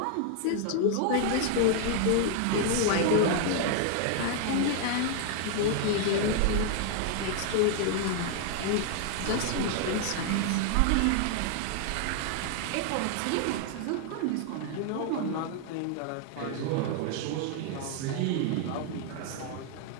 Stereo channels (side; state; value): both; different; correlation 0.00